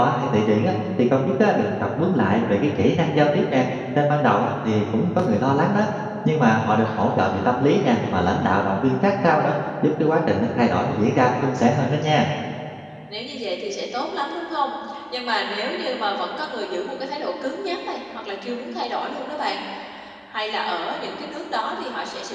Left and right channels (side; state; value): both; identical; correlation 1.00